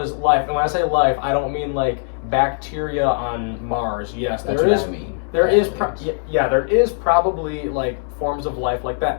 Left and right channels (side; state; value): right; silent; digital silence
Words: life, and when I say life, I don't mean like bacteria on Mars. Yes, That's there what is. I mean. There is, Aliens. there is probably like forms of life like